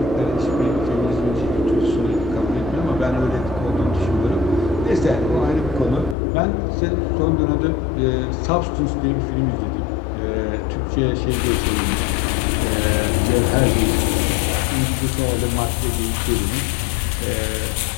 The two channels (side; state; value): right; drops out; at 6.2 s